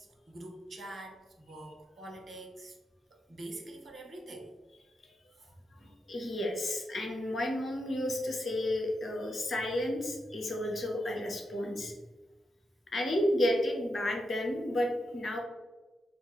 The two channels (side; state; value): both; normal; correlation 0.85